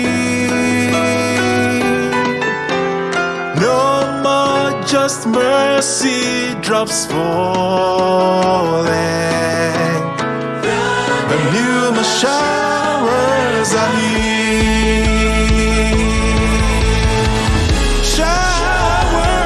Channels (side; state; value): both; identical; correlation 1.00